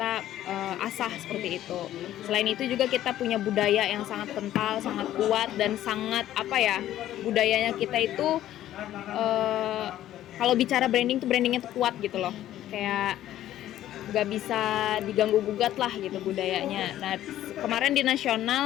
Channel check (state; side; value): quieter; right; 12.9 dB